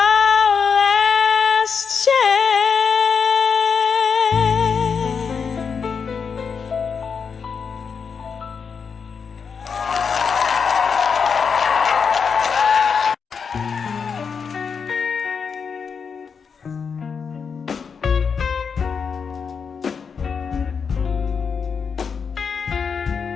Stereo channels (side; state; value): right; quieter; 6.1 dB